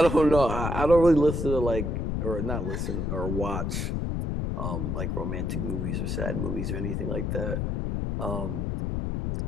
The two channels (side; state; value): left; noise; rumble, 1 dB below the sound